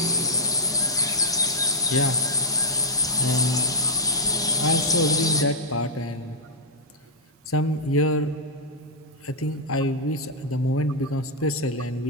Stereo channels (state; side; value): normal; both; correlation -0.06